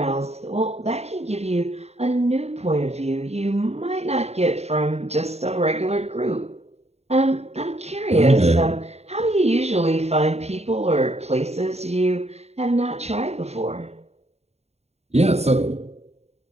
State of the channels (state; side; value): late; left; 0.31 ms